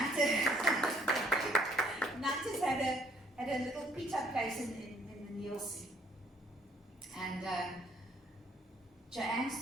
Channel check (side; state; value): both; normal; correlation 0.64